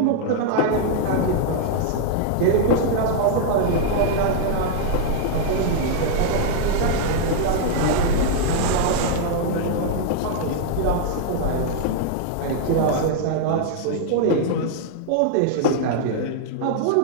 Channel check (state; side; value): different; both; correlation -0.01